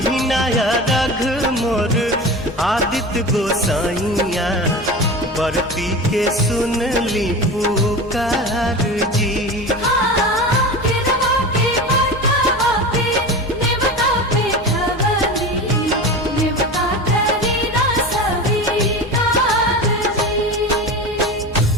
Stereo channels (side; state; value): both; normal; correlation 0.29